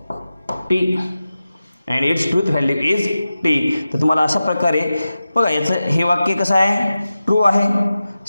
T, and its truth value is T. तर तुम्हाला अशा प्रकारे बघा याचं हे वाक्य कसं आहे, ट्रू आहे,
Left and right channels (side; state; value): both; inverted; correlation -0.94